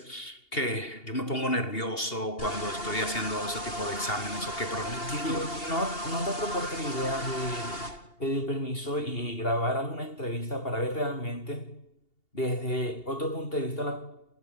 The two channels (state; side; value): late; right; 2.8 ms